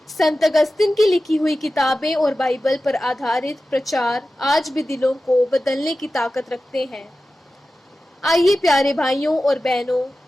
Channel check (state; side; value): normal; both; correlation 0.94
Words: संत अगस्तिन की लिखी हुई किताबें और बाइबल पर आधारित प्रचार आज भी दिलों को बदलने की ताकत रखते हैं। आइए प्यारे भाइयों और बहनों,